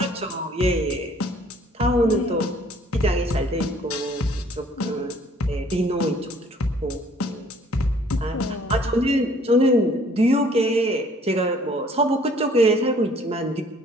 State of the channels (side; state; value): both; normal; correlation 0.58